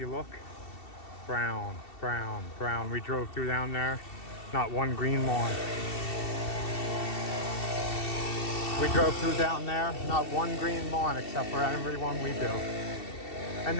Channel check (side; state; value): right; late; 2.7 ms